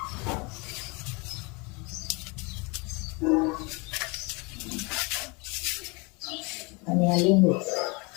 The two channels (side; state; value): right; quieter; 29.0 dB